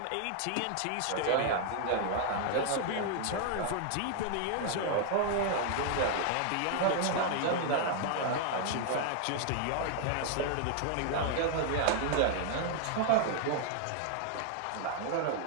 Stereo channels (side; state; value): both; different; correlation 0.00